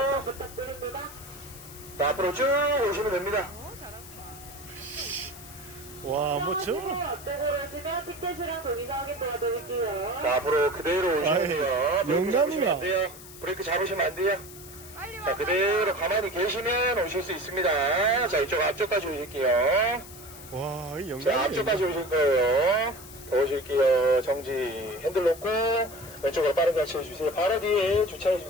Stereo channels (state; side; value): noise; left; hiss, 17 dB below the sound